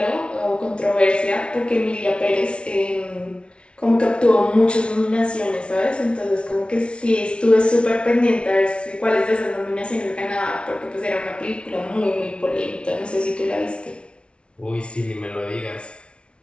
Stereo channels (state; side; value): late; right; 0.058 ms